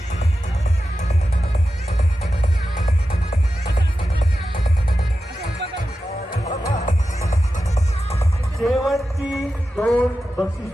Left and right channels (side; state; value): both; normal; correlation 0.92